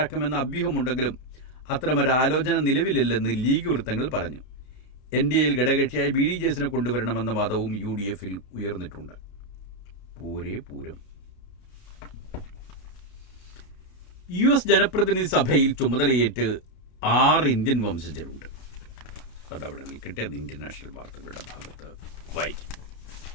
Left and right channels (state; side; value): late; right; 32 ms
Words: അഭ്യൂഹമുണ്ടെങ്കിലും അത്തരമൊരു ആലോചന നിലവിലില്ലെന്ന് ലീഗ് വൃത്തങ്ങൾ പറഞ്ഞു. NDAയിൽ ഘടകകക്ഷിയായ BDJSനെ കൊണ്ടുവരണമെന്ന വാദവും UDFിൽ ഉയർന്നിട്ടുണ്ട്. പൂരം. US ജനപ്രതിനിധി സഭയിൽ ചുമതലയേറ്റ് 6 ഇന്ത്യൻ വംശജരുണ്ട്. അതവിടെ നിൽക്കട്ടെ, അത് ഇന്റർനാഷണൽ വാർത്തകളുടെ ഭാഗത്ത് വായിക്കാം.